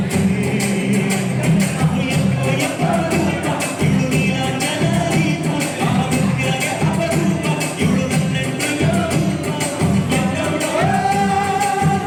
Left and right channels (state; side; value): identical; both; correlation 1.00